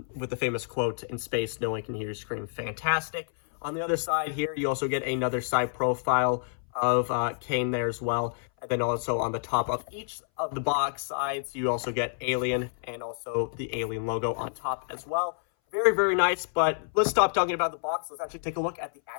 with the famous quote, "In space, no one can hear you scream." Fantastic. On the other side here, you also get another side profile of Kane there as well. And then also on the top of each of the box sides, you also get Alien and also the Alien logo on top as well. Very, very nice, but let's stop talking about the box. Let's actually take a look at the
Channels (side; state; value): right; silent; 58 dB below the other